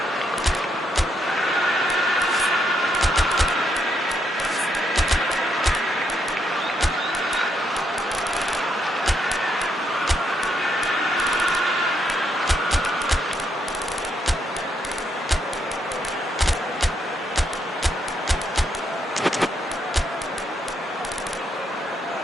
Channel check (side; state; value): both; normal; correlation 0.76